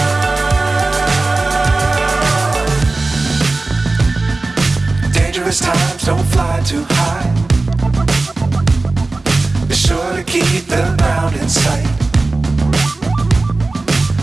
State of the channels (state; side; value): quieter; left; 3.3 dB